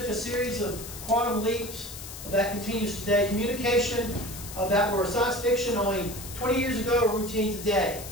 a series of quantum leaps that continues today. Communication that were science fiction only 20 years ago are routine today.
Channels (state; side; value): noise; left; hiss, 12 dB below the sound